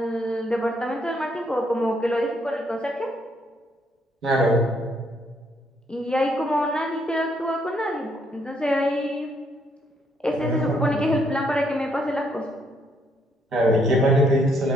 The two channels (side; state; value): both; normal; correlation 0.71